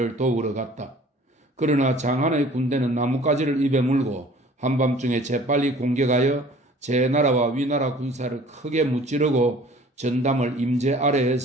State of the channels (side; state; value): both; normal; correlation 0.50